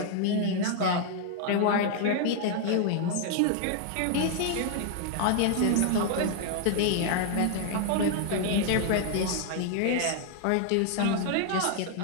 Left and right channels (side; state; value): both; different; correlation 0.00